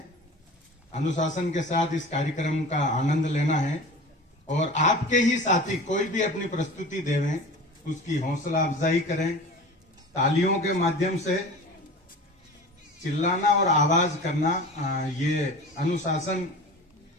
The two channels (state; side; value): normal; both; correlation 0.36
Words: अनुशासन के साथ इस कार्यक्रम का आनंद लेना है और आपके ही साथी कोई भी अपनी प्रस्तुति देवें, उसकी हौसला अफजाई करें। तालियों के माध्यम से चिल्लाना और आवाज करना ये अनुशासन